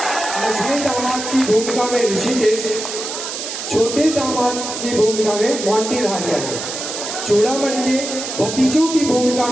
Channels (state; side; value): noise; right; hiss, 6 dB below the sound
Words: मझले दामाद की भूमिका में ऋषिकेश, छोटे दामाद की भूमिका में मोंटी राजा है। चूड़ामणि के भतीजों की भूमिका